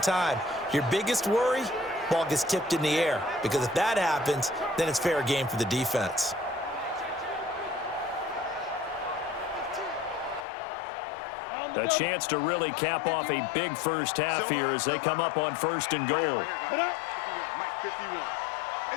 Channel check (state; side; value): drops out; right; at 10.5 s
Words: Your biggest worry, ball gets tipped in the air, because if that happens, then it's fair game for the defense. A chance to really cap off a big first half here as they come up on 1st and goal. Mike 51.